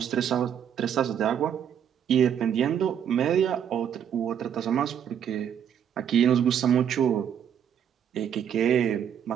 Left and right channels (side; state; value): left; quieter; 8.8 dB